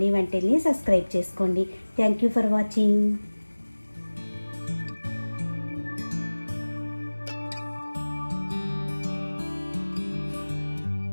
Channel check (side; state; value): both; inverted; correlation -1.00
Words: వంటిల్ని సబ్స్క్రైబ్ చేసుకోండి. Thank you for watching.